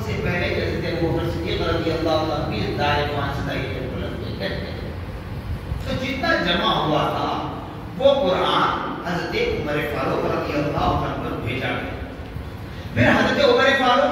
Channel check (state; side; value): identical; both; correlation 1.00